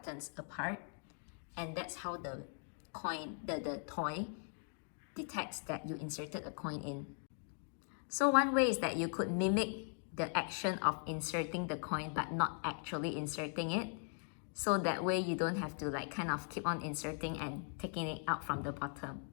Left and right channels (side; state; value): right; silent; 51 dB below the other